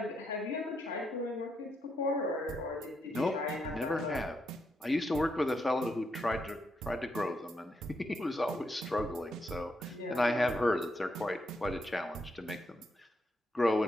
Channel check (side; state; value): both; normal; correlation 0.80